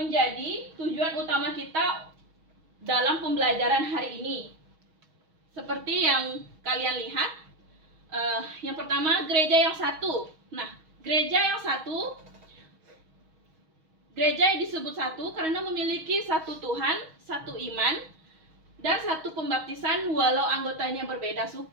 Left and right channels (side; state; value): left; late; 6.3 ms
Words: tujuan utama kita dalam pembelajaran hari ini. Seperti yang kalian lihat, yang pertama gereja yang satu. Nah, gereja yang satu, gereja yang disebut satu karena memiliki satu Tuhan, satu iman, dan satu pembaptisan walau anggotanya berbeda